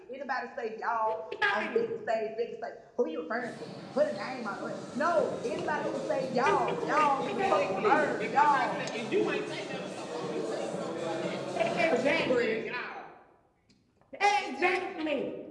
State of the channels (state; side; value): identical; both; correlation 1.00